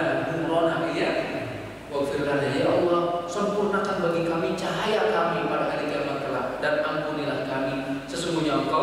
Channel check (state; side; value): identical; both; correlation 1.00